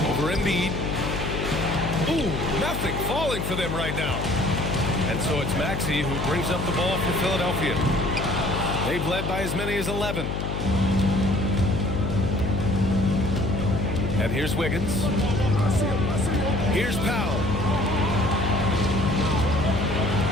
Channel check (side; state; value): left; noise; hum, 3 dB below the sound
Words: Over Embiid. Ooh, nothing falling for them right now. And so it's Maxey who brings up the ball for Philadelphia. They've led by as many as 11. And here's Wiggins. Here's Powell.